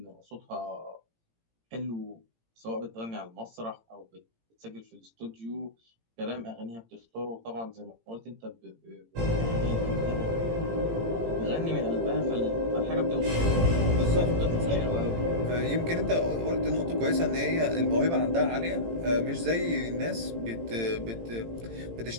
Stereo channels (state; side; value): late; left; 18 ms